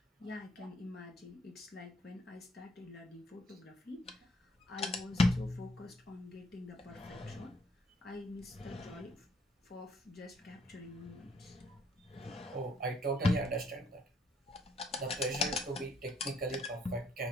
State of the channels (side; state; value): both; normal; correlation 0.66